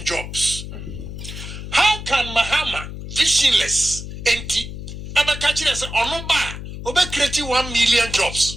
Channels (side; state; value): left; noise; hum, 9 dB below the sound